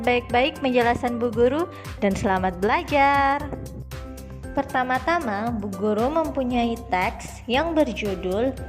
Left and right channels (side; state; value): both; identical; correlation 1.00